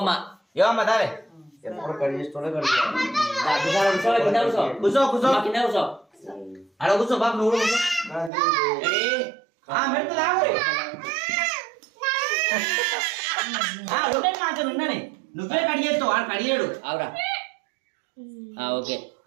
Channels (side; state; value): left; drops out; at 8.3 s